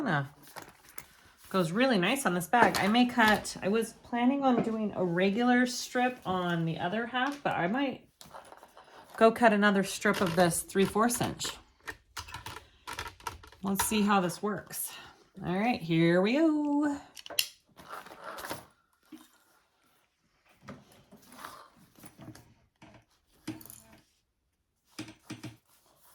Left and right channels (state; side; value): identical; both; correlation 1.00